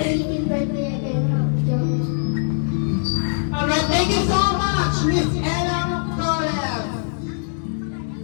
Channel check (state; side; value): silent; right; 64 dB below the other